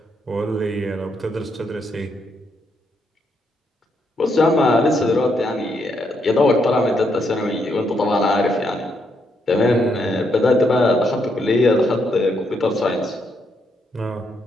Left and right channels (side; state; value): both; normal; correlation 0.77